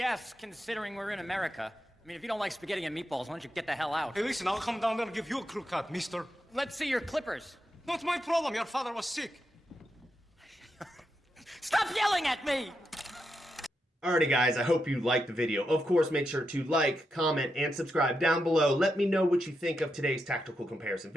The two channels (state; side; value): normal; both; correlation 0.85